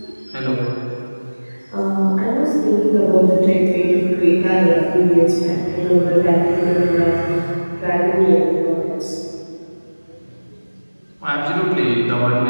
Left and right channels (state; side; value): inverted; both; correlation -1.00